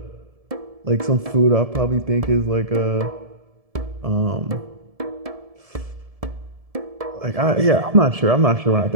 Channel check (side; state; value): left; late; 1.7 ms